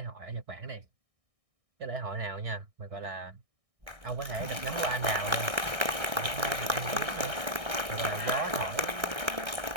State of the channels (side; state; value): left; late; 1.3 ms